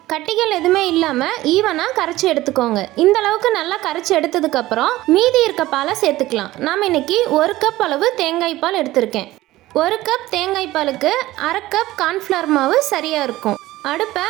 கட்டிகள் எதுவுமே இல்லாமல் ஈவனாக கரைச்சி எடுத்துக்கோங்க. இந்த அளவுக்கு நல்லா கரைச்சி எடுத்ததுக்கப்புறம் மீதி இருக்க பாலை சேர்த்துக்கலாம். நாம் இன்னைக்கு 1 கப் அளவு தேங்காய் பால் எடுத்திருக்கேன். 1 கப் தேங்காய் பாலுக்கு 1/2 கப் கார்ன்ஃப்ளவர் மாவு சரியாக இருக்கும். அடுப்பை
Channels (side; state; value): left; quieter; 16.8 dB